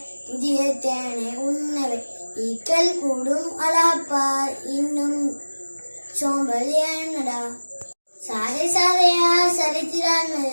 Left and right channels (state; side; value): inverted; both; correlation -1.00